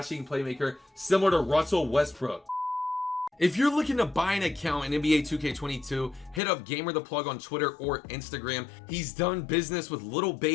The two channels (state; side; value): drops out; right; at 6.4 s